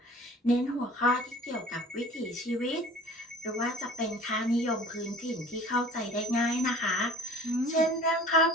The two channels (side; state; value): both; normal; correlation 0.45